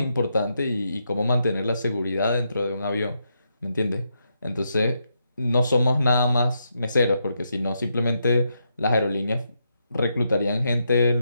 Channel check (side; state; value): both; inverted; correlation -0.81